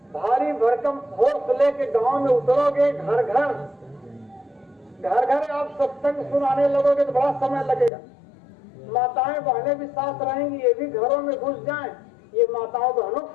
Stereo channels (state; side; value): drops out; right; at 7.9 s